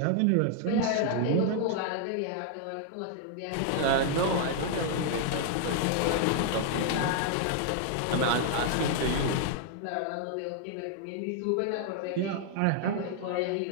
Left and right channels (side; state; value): both; different; correlation 0.00